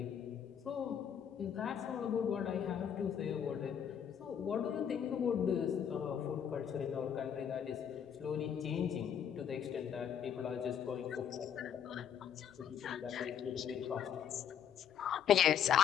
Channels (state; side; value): quieter; right; 8.6 dB